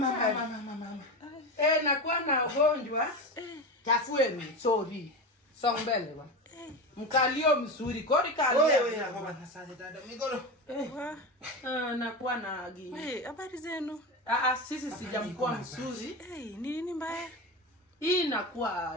Nakuwa na ugonjwa. Tafueni, sorry. Songbele wa. Mkalio mzuri, kodi kalio. Wewe na baba na sasa dada migolo. Nakuwa na gini. Habari zenu? Sisi sijamkuwa mzuri. Nini mbaya? Hii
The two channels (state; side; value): normal; both; correlation 0.22